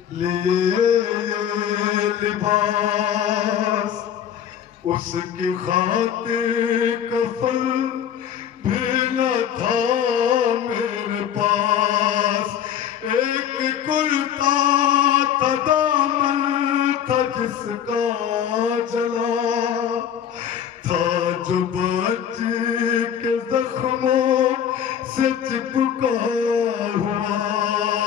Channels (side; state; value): right; quieter; 9.2 dB